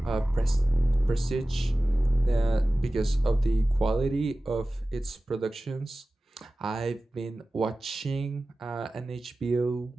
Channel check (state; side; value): normal; both; correlation 0.96